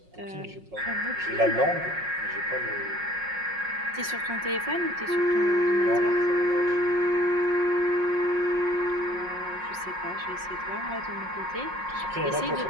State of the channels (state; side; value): late; left; 5.5 ms